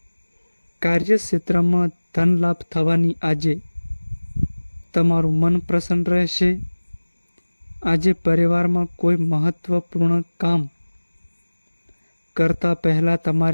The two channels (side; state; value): both; inverted; correlation -1.00